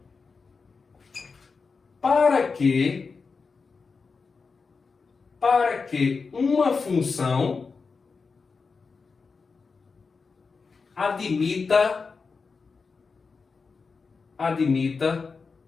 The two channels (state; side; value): quieter; right; 4.8 dB